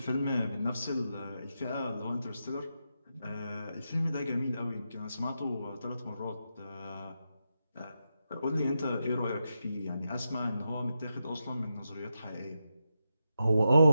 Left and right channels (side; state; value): both; inverted; correlation -0.86